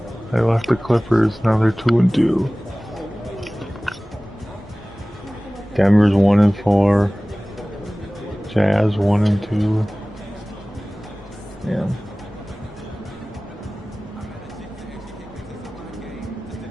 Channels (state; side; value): normal; both; correlation 0.98